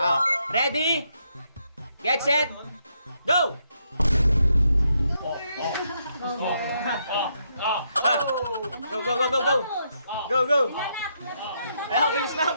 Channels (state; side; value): inverted; both; correlation -0.77